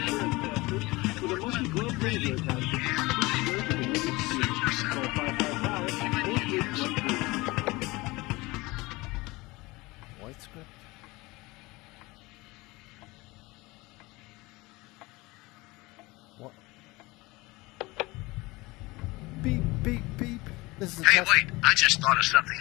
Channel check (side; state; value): right; quieter; 22.3 dB